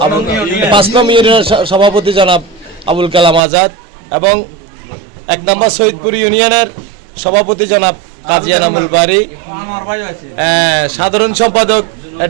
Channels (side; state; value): left; drops out; at 3.4 s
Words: 5 নম্বর ইউনিয়নের সভাপতি জনাব আবুল কালাম আজাদ এবং 1 নম্বর সৈয়দপুর ইউনিয়নের সভাপতি জনাব কাজী এনামুল বারী, সাধারণ সম্পাদক